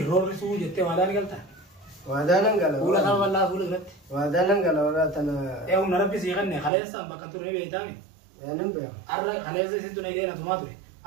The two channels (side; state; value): left; drops out; at 6.7 s